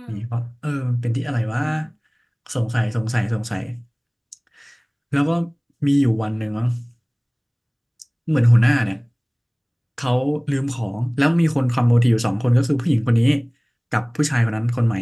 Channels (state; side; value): identical; both; correlation 1.00